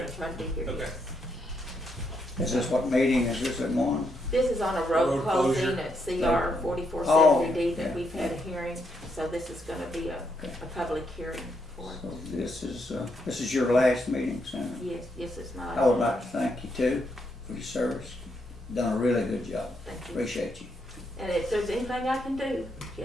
try to be here, Okay. yes. Is this what meeting is this at 1? This is on a road Road closing closure. at CR 4470D Oh, that yeah. we've had a hearing, so this is gonna be a public hearing for it. So this is your last meeting, Senator. Yes, yes, it's my. I would like to thank you too for your service. Done a really good job. Thank you. Appreciate you. And if there's anything I can do, you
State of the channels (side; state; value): both; normal; correlation 0.78